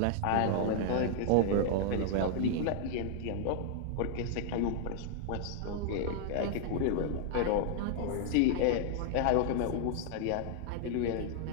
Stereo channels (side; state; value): both; different; correlation -0.01